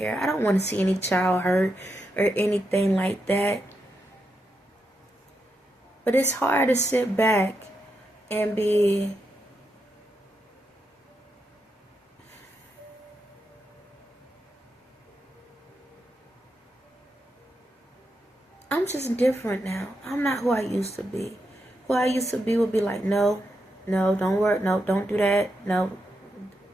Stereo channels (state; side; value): normal; both; correlation 0.84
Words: I don't want to see any child hurt or anything like that. But it's hard to sit back and be I'm just different now. I'm not who I used to be. Who I used to be would be like, no, don't work, no, don't do that, no.